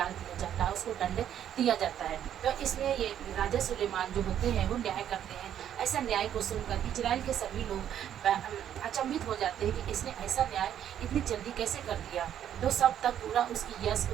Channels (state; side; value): quieter; left; 10.1 dB